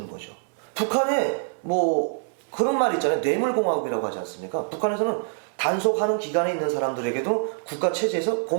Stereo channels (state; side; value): silent; left; digital silence